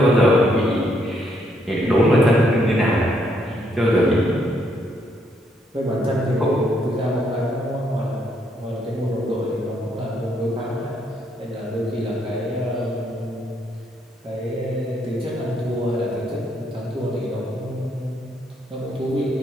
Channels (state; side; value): normal; both; correlation 0.73